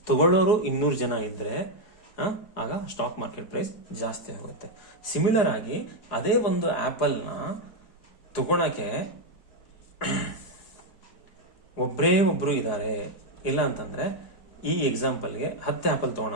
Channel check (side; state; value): right; late; 4.8 ms